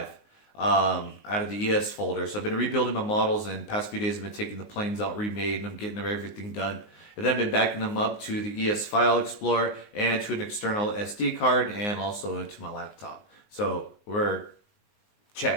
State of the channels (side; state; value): right; late; 19 ms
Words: out of the ES folder. So I've been rebuilding my models, and past few days I've been taking the planes out, remade, and I'm getting everything done. And then I've been backing them up to the ES File Explorer and to an external SD card and also into my laptop. So we're